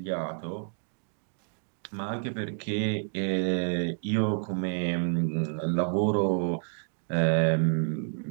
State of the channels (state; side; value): silent; left; digital silence